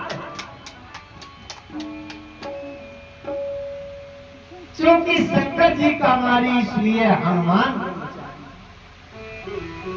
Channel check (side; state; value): both; identical; correlation 1.00